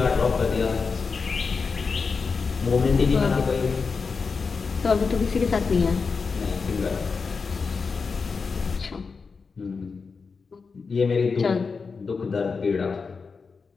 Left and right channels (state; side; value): quieter; right; 4.9 dB